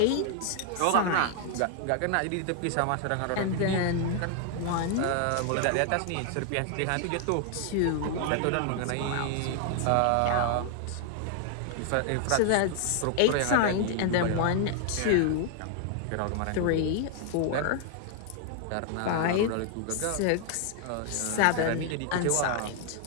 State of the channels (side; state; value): both; different; correlation 0.00